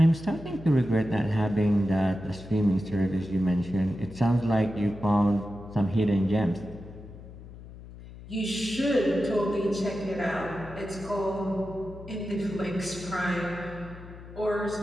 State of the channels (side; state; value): left; noise; hum, 16 dB below the sound